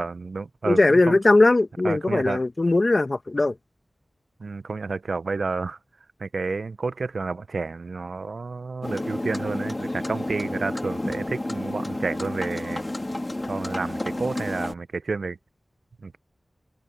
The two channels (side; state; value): both; normal; correlation 0.96